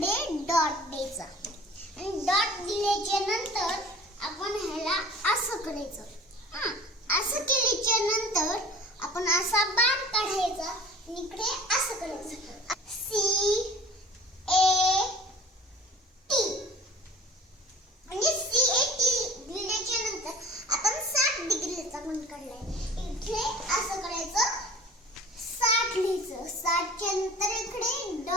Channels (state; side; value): normal; both; correlation 0.44